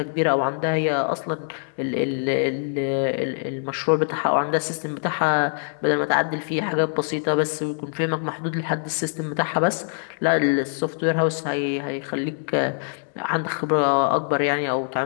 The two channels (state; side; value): silent; right; 63 dB below the other